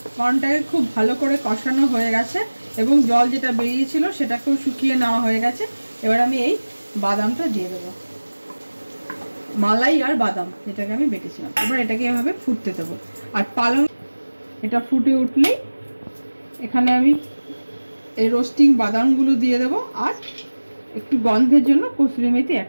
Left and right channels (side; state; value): both; inverted; correlation -1.00